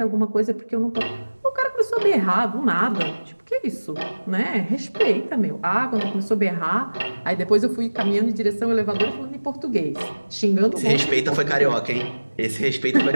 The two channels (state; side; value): inverted; both; correlation -1.00